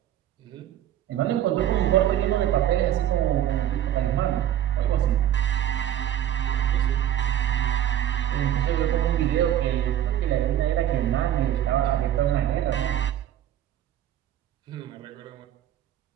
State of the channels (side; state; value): left; quieter; 11.4 dB